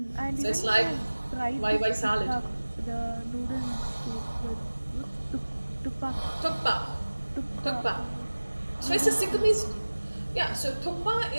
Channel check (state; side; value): inverted; both; correlation -1.00